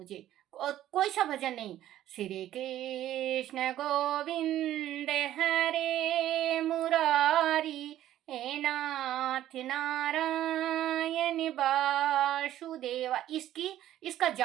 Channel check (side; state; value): left; quieter; 12.9 dB